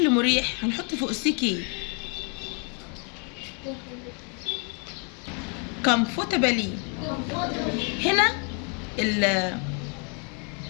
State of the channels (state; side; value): quieter; right; 37.4 dB